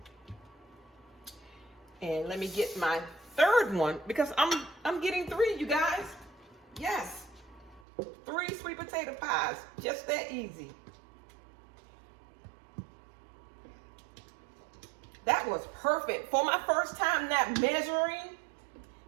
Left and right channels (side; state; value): left; drops out; at 7.8 s